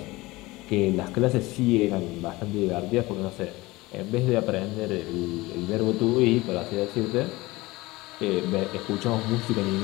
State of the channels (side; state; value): right; quieter; 20.8 dB